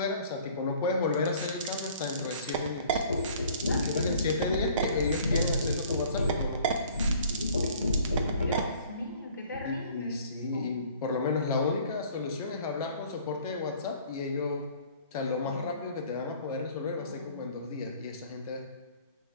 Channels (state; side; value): inverted; both; correlation -0.53